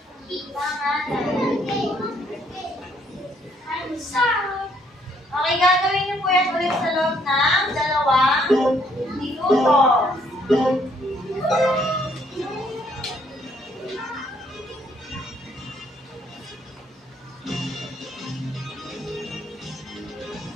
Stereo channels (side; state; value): both; normal; correlation 0.67